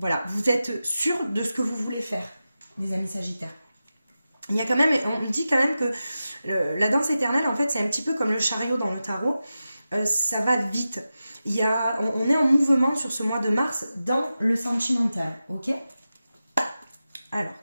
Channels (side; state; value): both; inverted; correlation -0.93